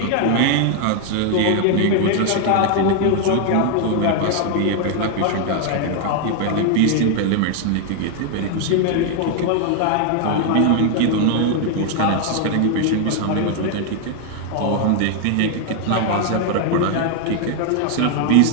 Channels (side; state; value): both; different; correlation 0.00